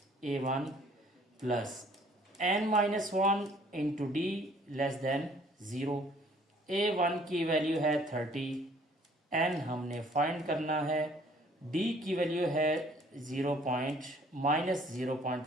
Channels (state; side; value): normal; both; correlation 0.58